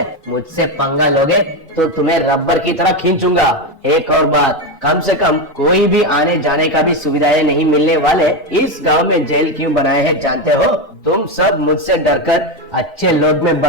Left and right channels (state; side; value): normal; both; correlation 0.13